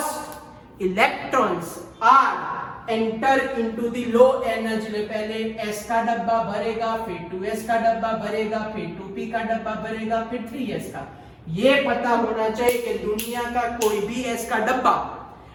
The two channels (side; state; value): both; identical; correlation 1.00